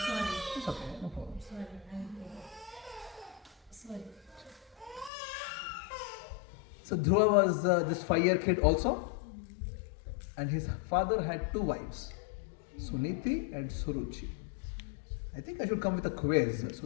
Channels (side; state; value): right; drops out; at 5.1 s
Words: Sorry. It's okay, no problem. Sorry. So Dhruva was this 5-year kid also. And his father had 2 wives, Suniti and Suruchi. I think I should come with a quiz